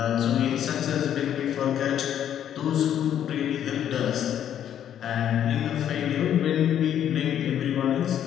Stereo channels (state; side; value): quieter; right; 10.1 dB